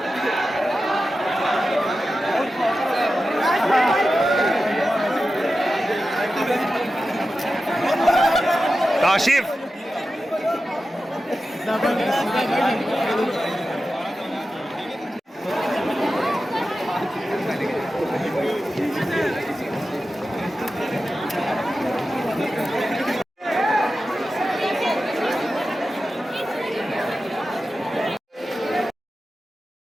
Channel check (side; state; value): both; normal; correlation 0.93